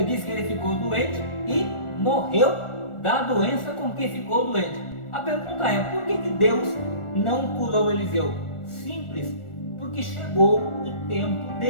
diz que ele ficou doente e morreu da doença com que ficou doente. A pergunta é, por que Deus não curou Eliseu? Simples, porque chegou o tempo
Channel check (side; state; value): right; late; 1.4 ms